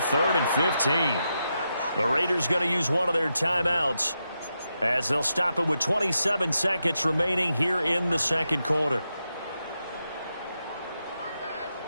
and 15. The Raiders going to use one of their timeouts as they'll stop it with 27 seconds remaining here in the second quarter.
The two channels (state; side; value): inverted; both; correlation -0.86